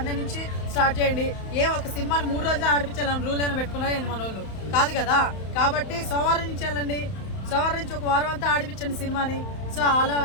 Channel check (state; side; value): late; right; 31 ms